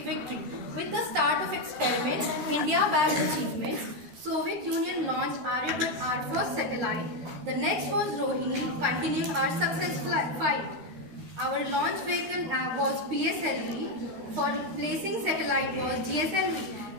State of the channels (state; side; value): late; left; 13 ms